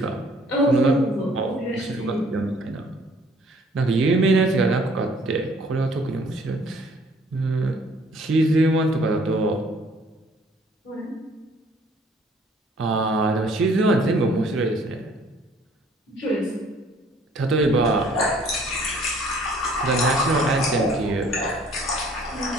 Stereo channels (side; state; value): both; normal; correlation 0.58